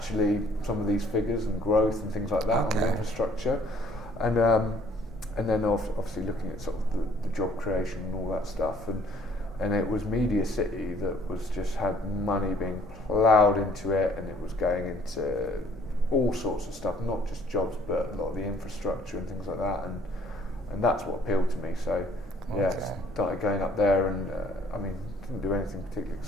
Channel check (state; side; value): normal; both; correlation 0.60